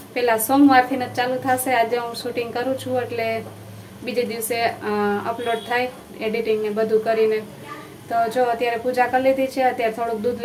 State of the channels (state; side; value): identical; both; correlation 1.00